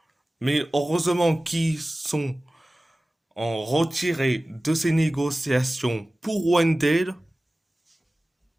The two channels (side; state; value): both; normal; correlation 0.97